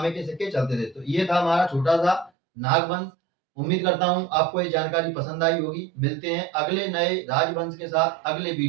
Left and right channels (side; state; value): left; drops out; at 2.3 s